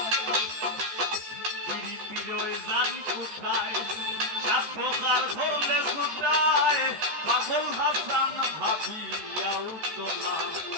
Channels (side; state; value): left; late; 14 ms